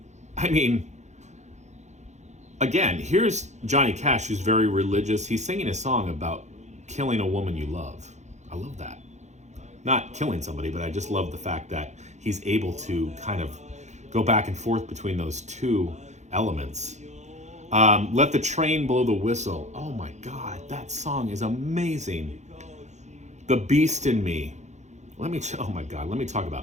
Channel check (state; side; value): late; left; 0.33 ms